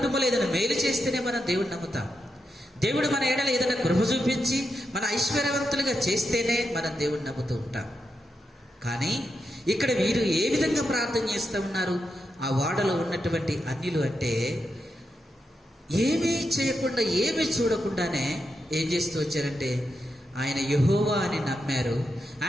ఏదైనా మేలు చేస్తేనే మనం దేవుని నమ్ముతాం. దేవుడు మన ఎడల ఏదైనా కృప చూపించి మన ఐశ్వర్యవంతులుగా చేస్తేనే మనం దేవుని నమ్ముతూ ఉంటాం. కానీ ఇక్కడ వీరు ఏ విధంగా ప్రార్థన చేస్తూ ఉన్నారు? ఆ వాడలో ఉన్నటువంటి అన్యులు అంటే ఏమీ చేయకుండా, ఏమీ చూడకుండానే ఏం చేస్తూ వచ్చారంటే, ఆయన యెహోవా అని నమ్మారు,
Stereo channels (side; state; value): both; normal; correlation 0.86